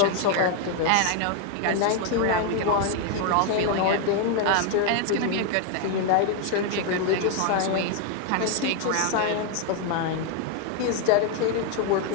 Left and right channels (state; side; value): different; both; correlation 0.01